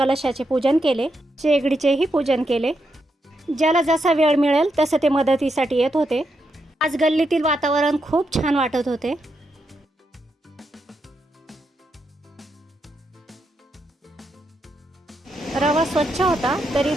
पूजन केले, शेगडीचेही पूजन केले. ज्याला जसा वेळ मिळेल तसं ते मदतीसाठी येत होते. आज गल्लीतील वातावरण खूप छान वाटत होते. रवा स्वच्छ होता तरी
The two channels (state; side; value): normal; both; correlation 0.82